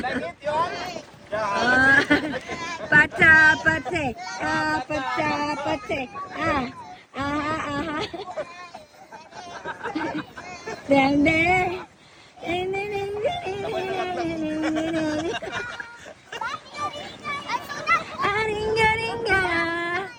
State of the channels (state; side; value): identical; both; correlation 1.00